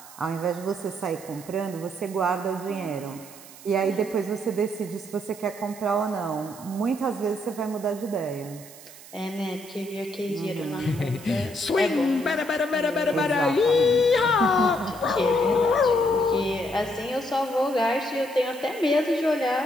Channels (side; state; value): right; noise; hiss, 18 dB below the sound